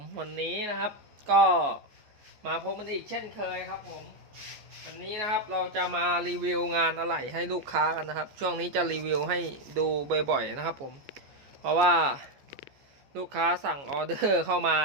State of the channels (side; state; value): left; late; 14 ms